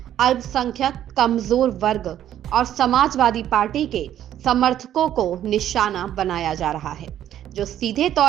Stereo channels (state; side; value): quieter; left; 11.3 dB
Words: अल्पसंख्यक, कमजोर वर्ग और समाजवादी पार्टी के समर्थकों को निशाना बनाया जा रहा है, जो सीधे